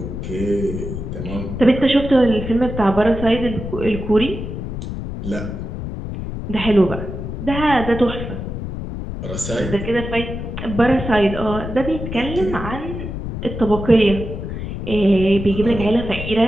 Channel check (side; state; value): left; noise; rumble, 6 dB below the sound